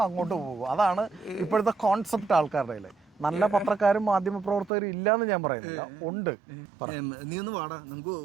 അങ്ങോട്ട് പോകും. അതാണ് ഇപ്പോഴത്തെ കോൺസെപ്റ്റ് ആൾക്കാരുടെ. നല്ല പത്രക്കാരും മാധ്യമ പ്രവർത്തകരും ഇല്ലാന്ന് ഞാൻ പറയുന്നില്ല, ഉണ്ട്. നീ ഒന്ന് വാടാ, നമുക്ക്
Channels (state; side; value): drops out; left; at 4.7 s